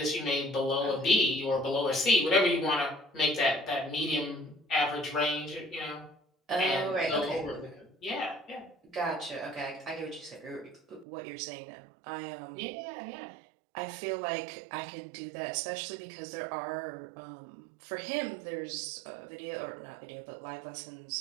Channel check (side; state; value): left; drops out; at 11.1 s